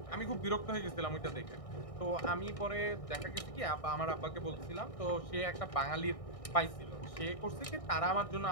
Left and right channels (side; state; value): right; late; 1.6 ms